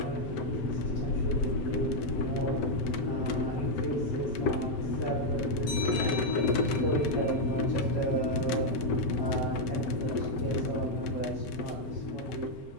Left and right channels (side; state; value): right; late; 7.7 ms